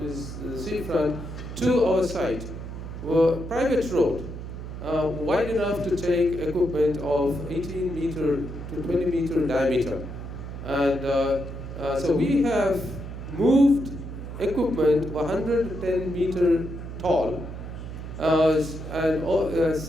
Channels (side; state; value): right; noise; hum, 9 dB below the sound